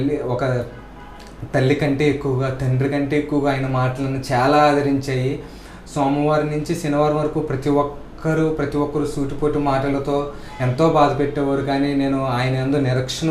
తల్లి కంటే ఎక్కువగా, తండ్రి కంటే ఎక్కువగా ఆయన మాటలను చాలా ఆదరించాయి. సోమవారం నుంచి శనివారం వరకు ప్రతి ఒక్కరు సూటిపోటు మాటలతో ఎంతో బాధ పెట్టేవారు. కానీ నేను ఆయన యందు నిరీక్షణ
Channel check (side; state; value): both; identical; correlation 1.00